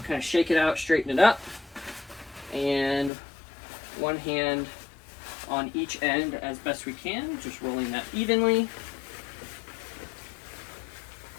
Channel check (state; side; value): drops out; right; at 3.1 s